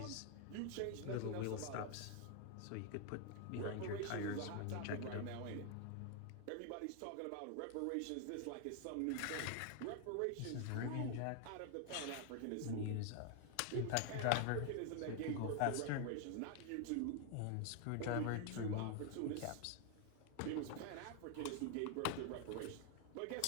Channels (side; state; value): both; different; correlation 0.00